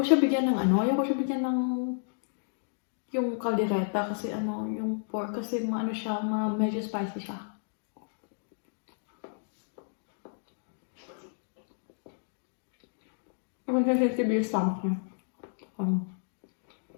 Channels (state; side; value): silent; right; digital silence